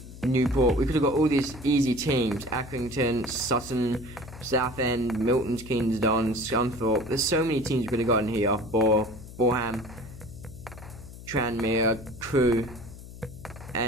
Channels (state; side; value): noise; left; hum, 15 dB below the sound